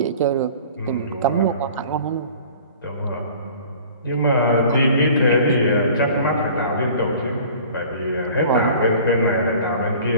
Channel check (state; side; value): inverted; both; correlation -0.46